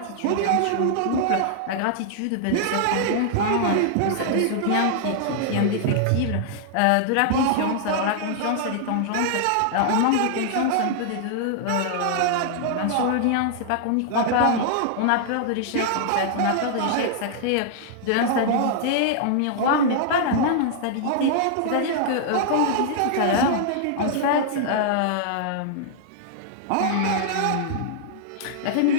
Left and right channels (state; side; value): different; both; correlation -0.01